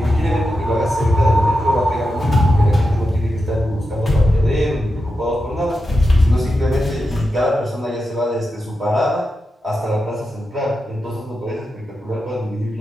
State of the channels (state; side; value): normal; both; correlation 0.89